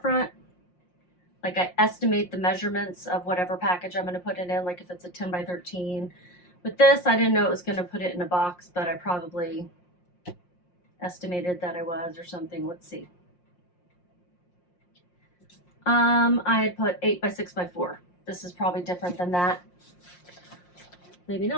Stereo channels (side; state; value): right; late; 5.6 ms